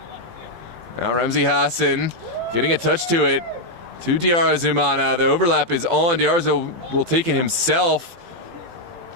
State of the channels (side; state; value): left; late; 18 ms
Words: Now Ramsey Hassan getting a touch to it. To Diar Zumana. The overlap is on. Diarzo will take it himself.